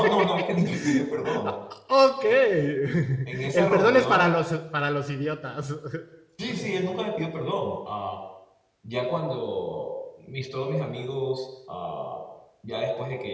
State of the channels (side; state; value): both; identical; correlation 1.00